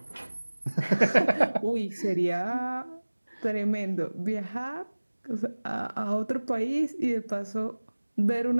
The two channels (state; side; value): inverted; both; correlation -1.00